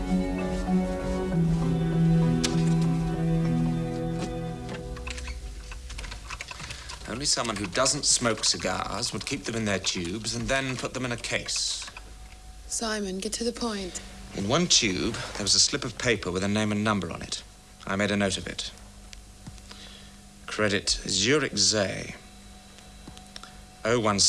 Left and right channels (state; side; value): identical; both; correlation 1.00